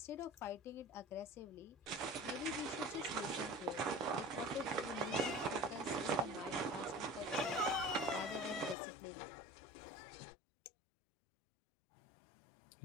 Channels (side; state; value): right; drops out; at 8.8 s